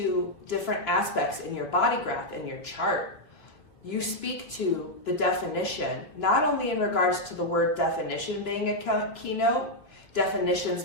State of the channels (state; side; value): late; right; 3.1 ms